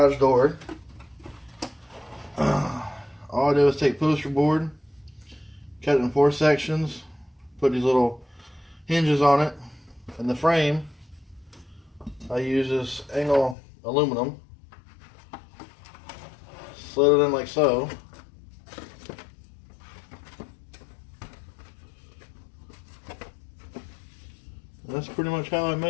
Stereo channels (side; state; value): right; drops out; at 13.6 s